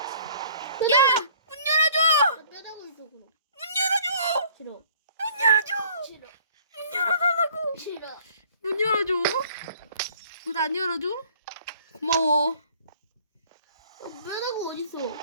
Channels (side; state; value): both; inverted; correlation -0.55